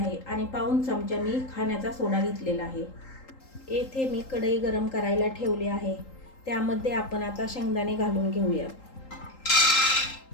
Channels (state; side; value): late; right; 3.8 ms